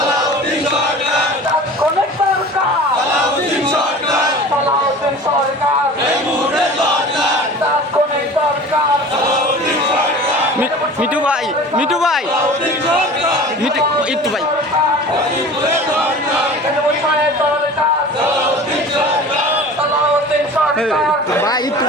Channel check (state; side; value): normal; both; correlation 0.40